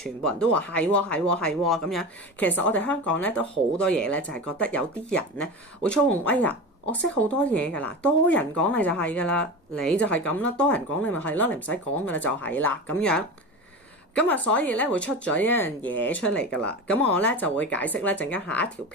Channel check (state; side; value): normal; both; correlation 0.27